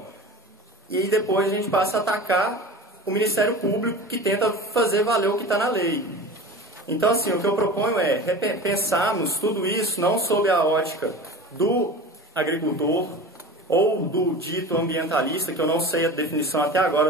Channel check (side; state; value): both; normal; correlation 0.34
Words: E depois a gente passa a atacar o Ministério Público, que tenta fazer valer o que está na lei. Então, assim, o que eu proponho é pensarmos tudo isso não sob a ótica do agricultor ou do dito ambientalista, que eu não sei a definição até